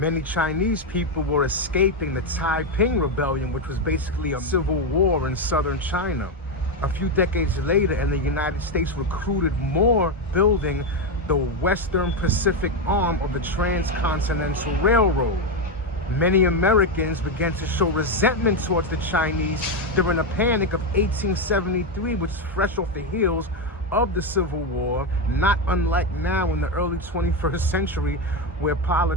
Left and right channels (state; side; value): normal; both; correlation 0.08